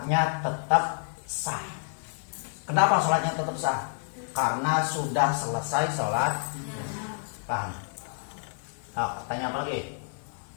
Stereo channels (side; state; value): right; silent; 59 dB below the other